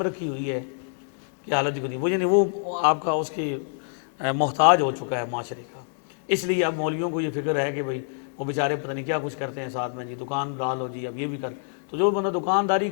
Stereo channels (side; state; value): right; silent; digital silence